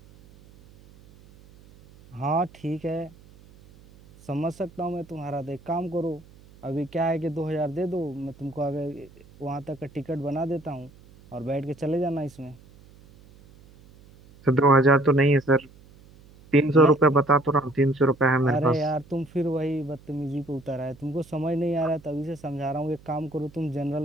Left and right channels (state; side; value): noise; right; hum, 24 dB below the sound